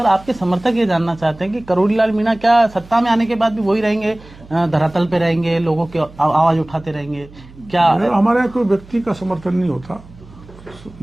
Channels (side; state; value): right; noise; hum, 21 dB below the sound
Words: आपके समर्थक ये जानना चाहते हैं कि करोड़ीलाल मीणा क्या सत्ता में आने के बाद भी वही रहेंगे, धरातल पे रहेंगे, लोगों की आवाज उठाते रहेंगे क्या? हमारे यहाँ कोई व्यक्ति का समर्थन नहीं होता।